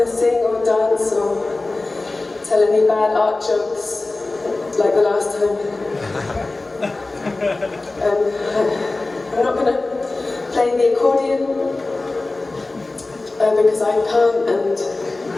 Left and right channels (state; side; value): quieter; right; 3.2 dB